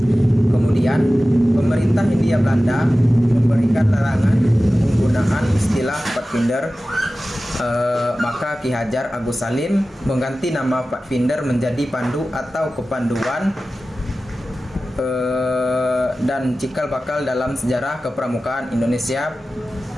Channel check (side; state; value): both; normal; correlation 0.95